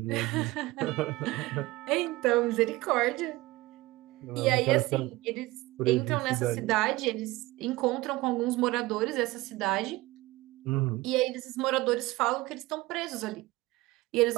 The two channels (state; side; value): quieter; left; 19.8 dB